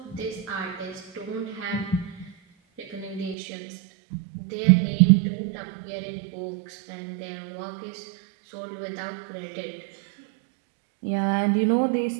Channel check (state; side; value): drops out; left; at 3.4 s